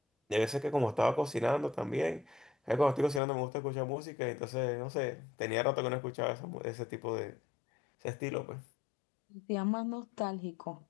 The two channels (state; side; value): drops out; right; at 3.2 s